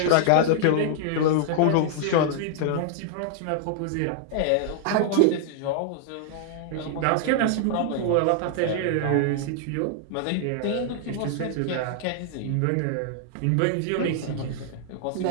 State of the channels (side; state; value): both; different; correlation -0.01